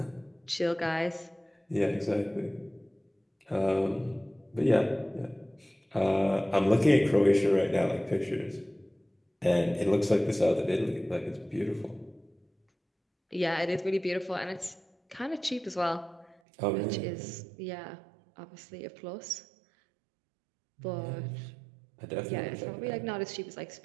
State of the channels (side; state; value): left; drops out; at 16.4 s